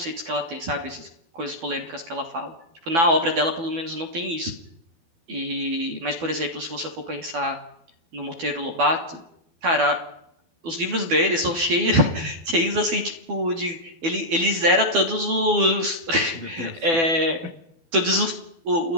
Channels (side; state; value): left; late; 12 ms